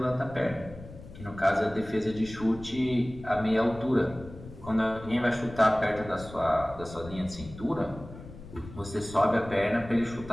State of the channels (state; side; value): noise; left; rumble, 15 dB below the sound